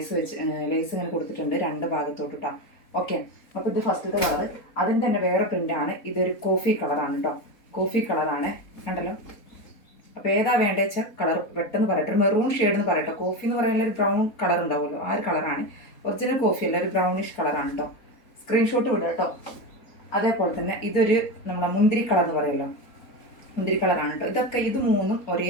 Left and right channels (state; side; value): late; right; 4.0 ms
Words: ഇങ്ങനെ കൊടുത്തിട്ടുണ്ട് രണ്ട് ഭാഗത്തോട്ട് കേട്ടോ. ഓക്കെ, അപ്പോൾ ഇത് ഫസ്റ്റത്തെ കളർ. അതിൻ്റെ തന്നെ വേറെ പ്രിന്റാണ്. ഇതൊരു കോഫി കളറാണ് കേട്ടോ. കോഫി കളറാണ്, കണ്ടല്ലോ. അപ്പോൾ ഏതാ വേണ്ടത് വെച്ചാൽ കളർ പെട്ടെന്ന് പറയട്ടെ. ഒരു മെറൂൺ ഷെയ്ഡ് എന്ന് പറയട്ടോ. കോഫി എന്ന് പറയുന്ന ഒരു ബ്രൗൺ കളർ ഉണ്ടാവുമല്ലോ, ആ ഒരു കളറാണ്. ഒറിജിനൽ കോഫി അല്ല, ഒരു ബ്രൗണിഷ് കളറാണ് കേട്ടോ. സ്ക്രീൻഷോട്ട് വിടുക കേട്ടോ. അതേപോലെ തന്നെ ഇതൊരു നമ്മളെ മുന്തിരി കളർ എന്ന് പറയുമല്ലോ, മുന്തിരി കളറാണ് കേട്ടോ. ഇത് മൂന്നും ഒരേ